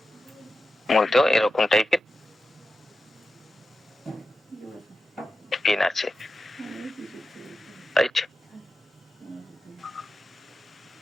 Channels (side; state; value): both; normal; correlation 0.92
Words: এরকম টাইপের পেন আছে, রাইট?